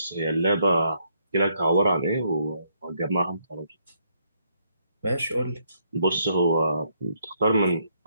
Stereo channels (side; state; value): both; inverted; correlation -0.73